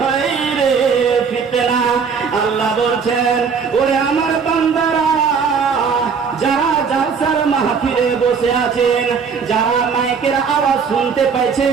ফিতনা। আল্লাহ বলছেন, ওরে আমার বান্দারা, যারা জালসার মাহফিলে বসে আছেন, যারা মাইকের আওয়াজ শুনতে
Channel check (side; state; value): left; quieter; 5.9 dB